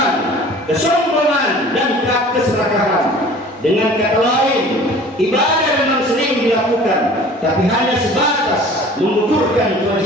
kesombongan, dan keserakahan. Dengan kata lain, ibadah memang sering dilakukan, tapi hanya sebatas mengukurkan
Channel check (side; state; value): both; normal; correlation 0.46